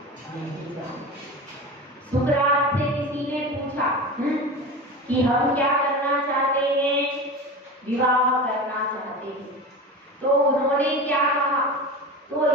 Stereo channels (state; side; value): normal; both; correlation 0.29